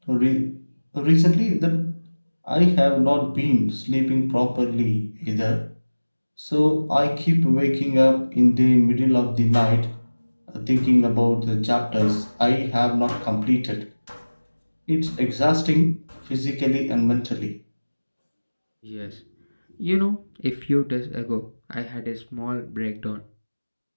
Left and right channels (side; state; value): both; inverted; correlation -1.00